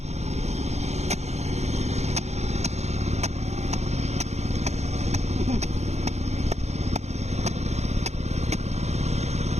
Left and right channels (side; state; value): left; late; 0.32 ms